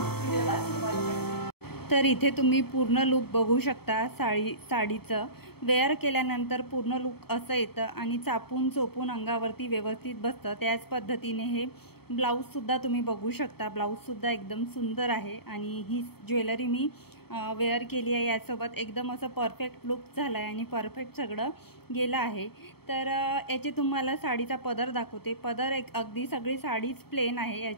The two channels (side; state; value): right; late; 0.96 ms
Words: मग व्हिडिओला सुरुवात करूया. तर इथे तुम्ही पूर्ण लुक बघू शकता. साडीचं वेअर केल्यानंतर पूर्ण लुक असं येतं आणि चापून चोपून अंगावरती व्यवस्थित बसतं. त्याच पद्धतीने हे ब्लाऊजसुद्धा तुम्ही बघू शकता. ब्लाऊजसुद्धा एकदम सुंदर आहे आणि ही ज्वेलरी मी वेअर केली आहे. यासोबत एकदम असं परफेक्ट लुक झाला आहे आणि परफेक्ट सगळं गेलं आहे. तर याचे तुम्हाला साडीचा पदर दाखवते. पदर एक अगदी सगळी साडीच प्लेन आहे,